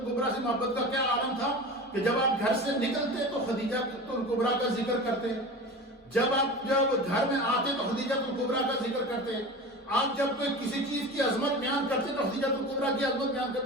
سے محبت کا کیا عالم تھا کہ جب آپ گھر سے نکلتے تو خدیجہ کبریٰ کا ذکر کرتے، جب گھر میں آتے تو خدیجہ کبریٰ کا ذکر کرتے، آپ جب کوئی کسی چیز کی عظمت بیان کرتے تو خدیجہ کبریٰ کی عظمت بیان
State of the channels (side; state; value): both; normal; correlation 0.32